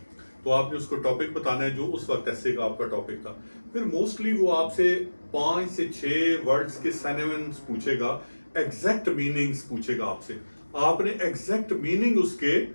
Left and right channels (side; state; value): both; inverted; correlation -1.00